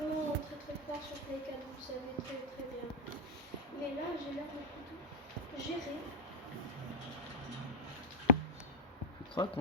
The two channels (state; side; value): normal; both; correlation 0.02